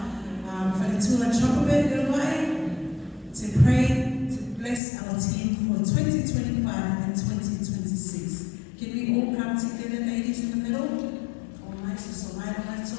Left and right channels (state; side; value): drops out; right; at 4.8 s